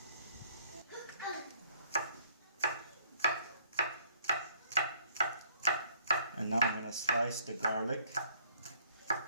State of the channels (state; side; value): inverted; both; correlation -0.63